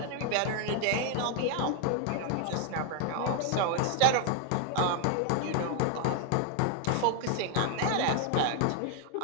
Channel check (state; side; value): different; both; correlation 0.00